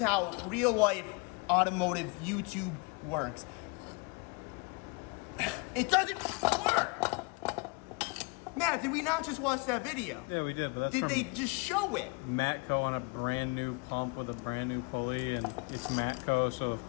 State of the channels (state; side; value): quieter; right; 30.2 dB